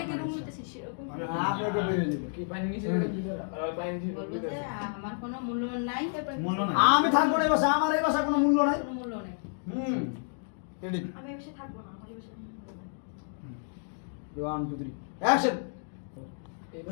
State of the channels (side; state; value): right; silent; digital silence